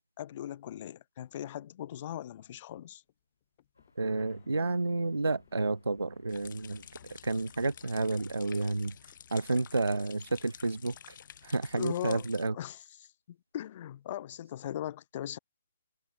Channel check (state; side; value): inverted; both; correlation -0.86